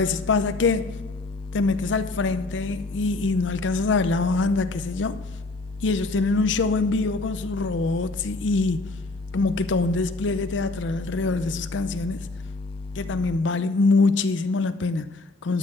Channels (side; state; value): right; quieter; 3.2 dB